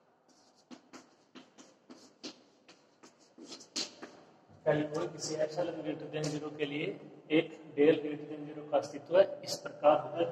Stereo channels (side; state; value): both; identical; correlation 1.00